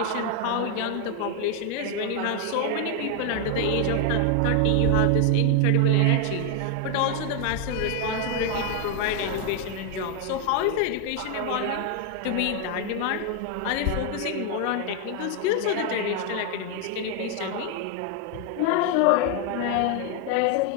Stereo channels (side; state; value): both; different; correlation 0.01